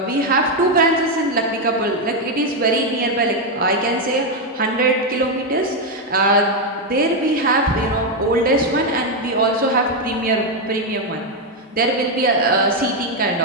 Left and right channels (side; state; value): both; normal; correlation 0.04